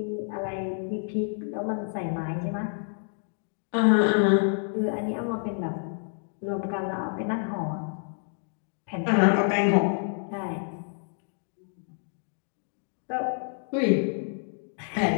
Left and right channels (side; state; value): right; silent; 59 dB below the other